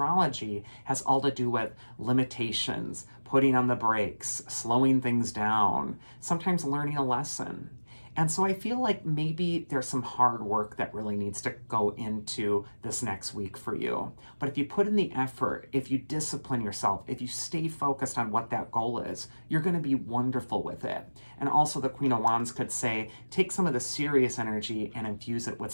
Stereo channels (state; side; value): inverted; both; correlation -1.00